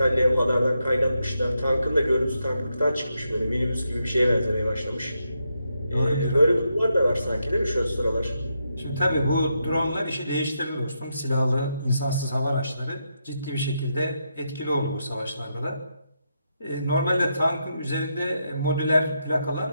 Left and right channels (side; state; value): both; inverted; correlation -0.83